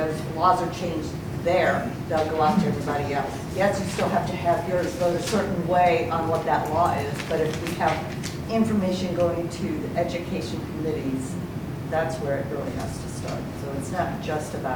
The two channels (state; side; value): identical; both; correlation 1.00